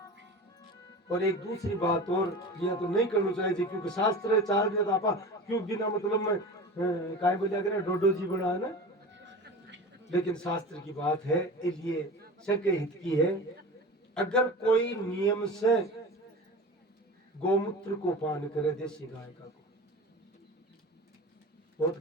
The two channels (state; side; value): normal; both; correlation 0.33